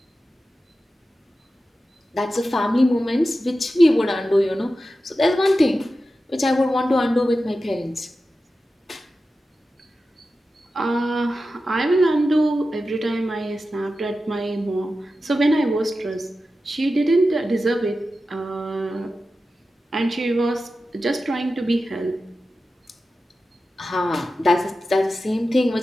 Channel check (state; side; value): normal; both; correlation 0.93